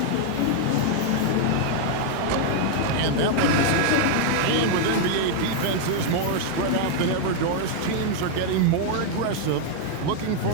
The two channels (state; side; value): different; both; correlation 0.00